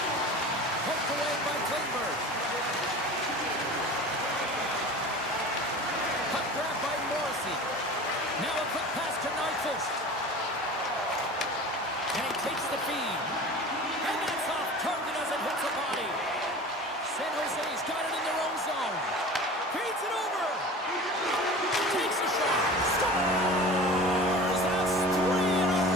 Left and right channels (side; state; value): both; normal; correlation 0.37